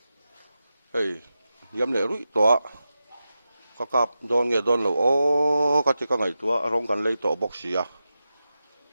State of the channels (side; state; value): both; inverted; correlation -0.91